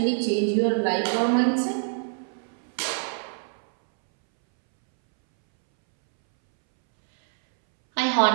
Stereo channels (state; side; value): silent; left; 62 dB below the other